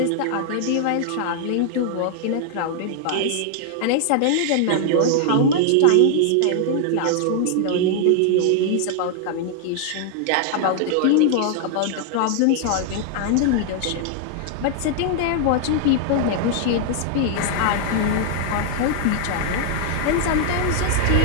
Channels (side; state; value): both; different; correlation 0.00